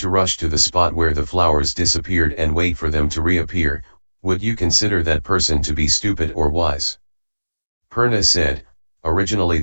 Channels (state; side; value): inverted; both; correlation -1.00